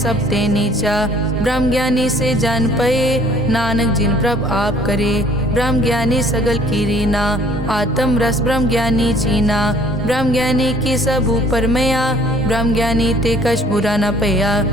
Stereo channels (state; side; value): normal; both; correlation 0.56